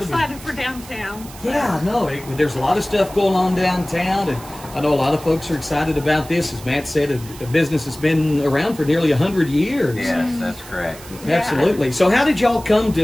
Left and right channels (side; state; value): right; noise; hiss, 18 dB below the sound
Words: be- excited for downtown. Yeah, no, there's a lot of stuff going on downtown, and I know a lot of folks are excited about this. As Matt said, a business has been around for nearly 100 years. Yes, that's correct. Absolutely. So how did y'all come